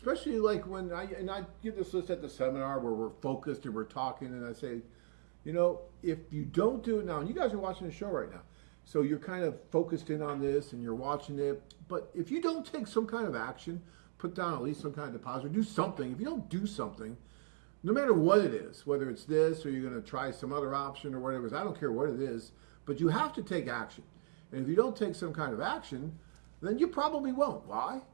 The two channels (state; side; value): silent; left; digital silence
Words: like when I give this list at the seminar where we're focused and we're talking, and I say, if you don't do it now, and you guys are watching the show right now, so you're kind of focused in on this and you're watching it, but if you don't take some kind of action, put down at least some kind of deposit, or do something. If you don't do something, no matter what it is, whether it's this or you're going to try some other option or whatever, I don't care what it is, but you have to take action. And if you don't take some kind of action, then you probably won't. Why?